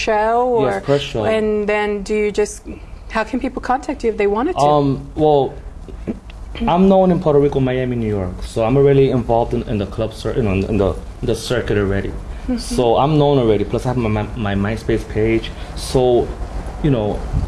or yes, per show? And then do you just? How can people contact you if they wanted to? Well, I'm known in Puerto Rico, Miami, New York, so I'm already involved in the club, in the circuit already. So I'm known already. Plus, I have my MySpace page. So,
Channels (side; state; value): both; identical; correlation 1.00